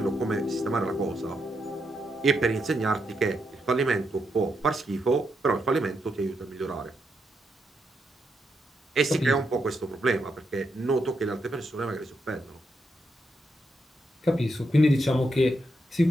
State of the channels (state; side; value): normal; both; correlation 0.81